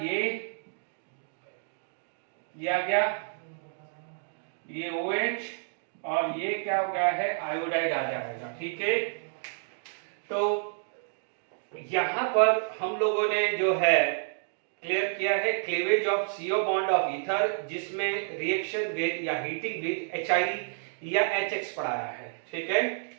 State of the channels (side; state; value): left; silent; digital silence